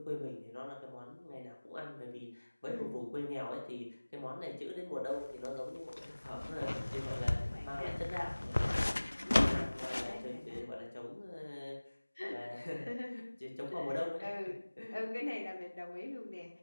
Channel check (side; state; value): both; inverted; correlation -1.00